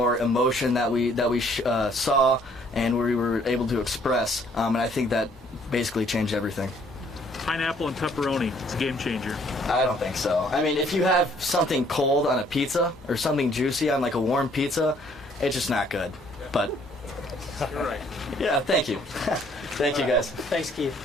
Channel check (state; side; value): normal; both; correlation 0.62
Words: emotion that we saw and we were able to express, and I think that basically changed everything. Pineapple and pepperoni, it's a game changer. I don't think so. I mean, if you have something cold on a pizza or something juicy on like a warm pizza, it's just not good. But you're right. Yeah, thank you. Thank you, guys. Thanks, Keith.